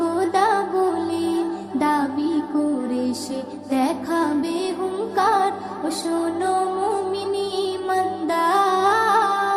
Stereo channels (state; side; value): identical; both; correlation 1.00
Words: বলে দাবি করে সে দেখাবে হুঙ্কার। ও শোনো মুমিন ইমানদার,